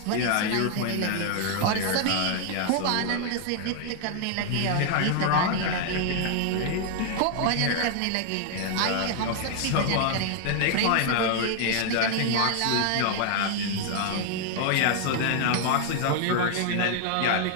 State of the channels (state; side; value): different; both; correlation 0.00